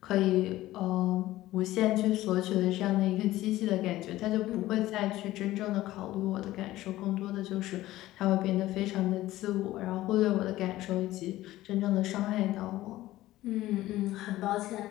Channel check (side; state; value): right; quieter; 16.0 dB